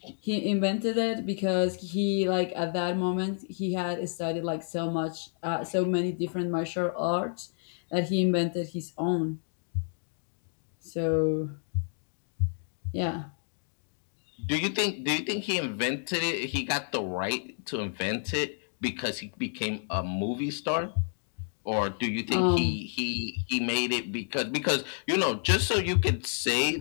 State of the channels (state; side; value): silent; right; digital silence